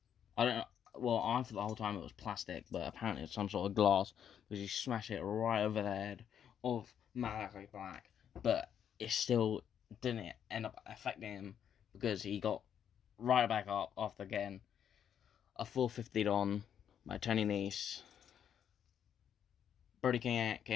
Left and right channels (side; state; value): right; quieter; 8.9 dB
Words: I thought the whole time it was plastic, but apparently it's some sort of glass, because he smashed it right over the head of Malachi Black, but it still didn't end up affecting him, because he got right back up after getting a 450'd on by Tony Nese. Brody King